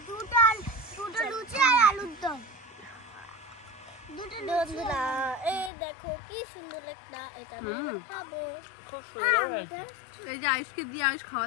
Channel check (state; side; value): drops out; right; at 5.7 s